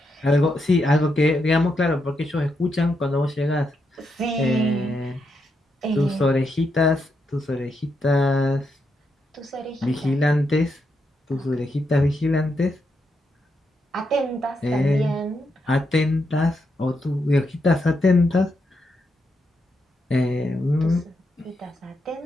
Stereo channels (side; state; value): both; normal; correlation 0.82